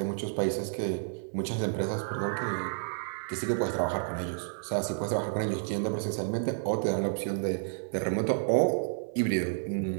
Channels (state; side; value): silent; left; 57 dB below the other